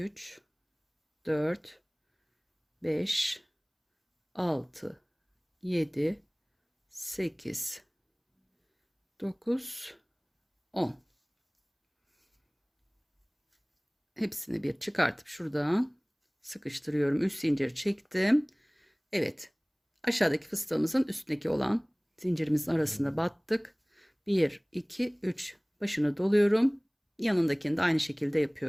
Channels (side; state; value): both; identical; correlation 1.00